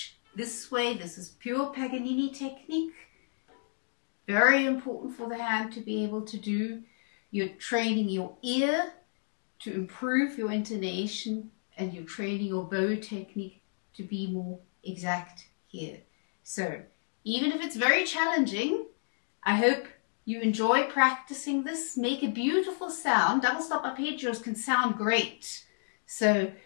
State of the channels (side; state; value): right; silent; digital silence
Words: this way. This is pure Paganini technique. Very important for the hand to be able to do. You're training your ear to improve your intonation, and you're training your bow technique to be more exact here. So even if it's very challenging, I hope you enjoy practicing this. Make a beautiful sound. Double stop arpeggios can sound great. So